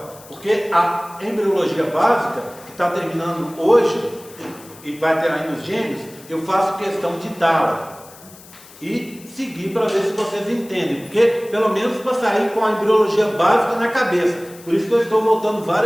porque a embriologia básica, que está terminando hoje, e vai ter aí nos gêmeos, eu faço questão de dá-la e seguir para ver se vocês entendem, porque pelo menos para sair com a embriologia básica na cabeça. Por isso que eu estou voltando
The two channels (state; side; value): noise; left; hiss, 21 dB below the sound